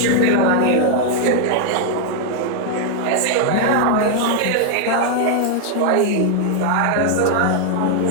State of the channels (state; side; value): different; both; correlation 0.00